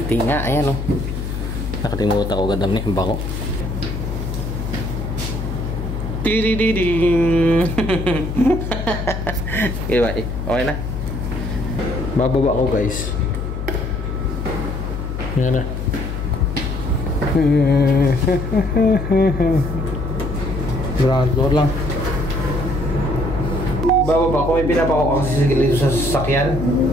nga. Ayan o. Nakalimutan ko gandam niya. Bako. Tidididing. Diba eh? Okay na. Bababa ko guys. Ayan na. Ground floor lang. Bababa ko, pinapa ko kasi dito sa sasakyan.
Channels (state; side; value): noise; left; hum, 4 dB below the sound